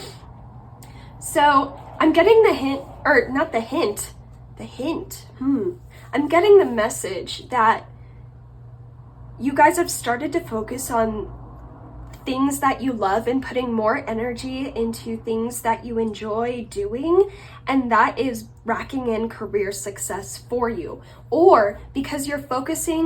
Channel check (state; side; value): identical; both; correlation 1.00